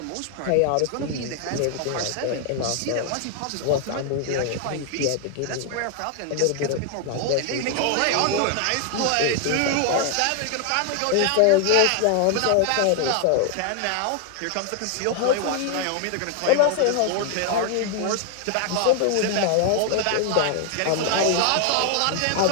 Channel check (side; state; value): both; different; correlation 0.00